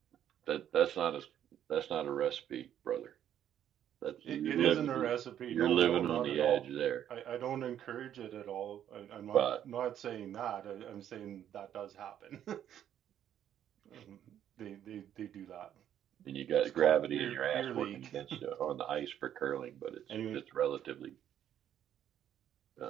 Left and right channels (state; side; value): quieter; left; 10.4 dB